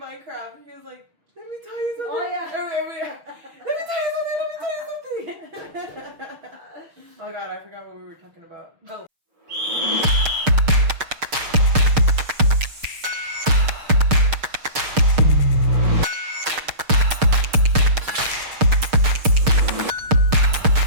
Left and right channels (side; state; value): left; late; 6.5 ms